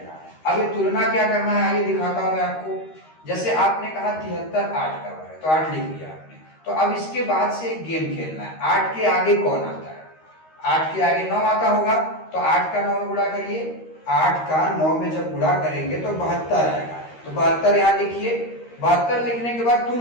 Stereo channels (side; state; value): right; late; 13 ms